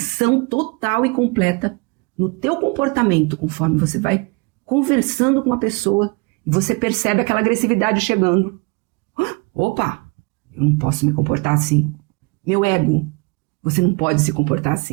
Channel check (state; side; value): quieter; left; 29.4 dB